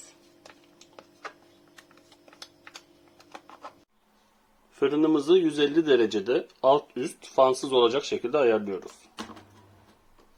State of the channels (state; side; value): identical; both; correlation 1.00